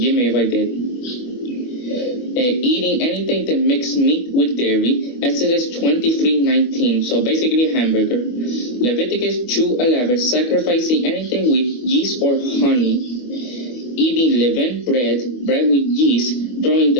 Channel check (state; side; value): late; right; 24 ms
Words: me if I did. Eating anything that mixed meat with dairy, Exodus 23:19, so basically a hamburger. Leviticus 2:11, sacrificing anything with yeast or honey. Eating leavened bread with yeast, during